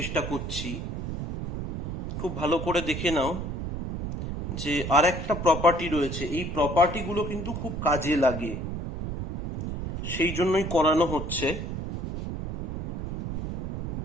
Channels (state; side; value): noise; right; rumble, 5 dB below the sound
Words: করছি। খুব ভালো করে দেখে নাও যে আর একটা প্রপার্টি রয়েছে, এই প্রপার্টিগুলো কিন্তু খুব কাজে লাগে, সেই জন্যই করানো হচ্ছে।